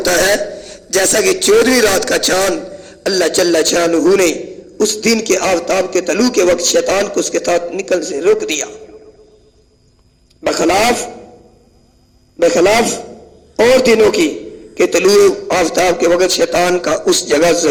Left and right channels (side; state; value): both; identical; correlation 1.00